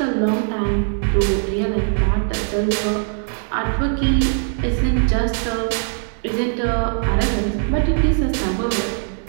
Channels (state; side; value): silent; left; digital silence